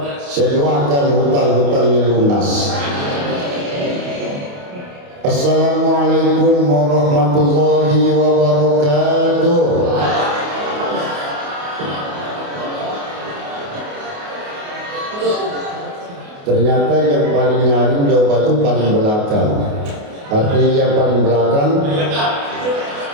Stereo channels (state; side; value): late; left; 28 ms